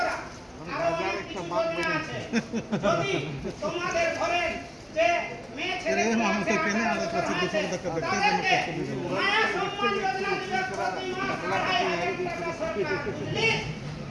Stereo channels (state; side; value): identical; both; correlation 1.00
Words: আরো অনেক কিছু যোজনা আছে। যদি তোমাদের ঘরে যে মেয়ে ছেলে আছে, তাদেরকে মায়া সম্মান যোজনা দিবে, প্রতি মাস 2,500 টাকা সরকার, বুঝলি?